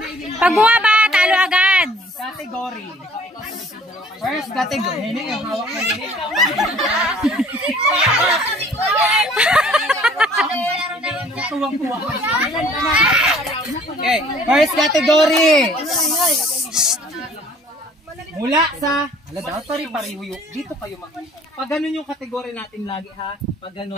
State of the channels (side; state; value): both; normal; correlation 0.54